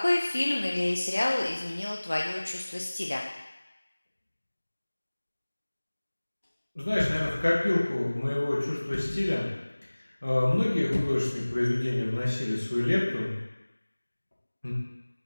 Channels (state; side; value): inverted; both; correlation -1.00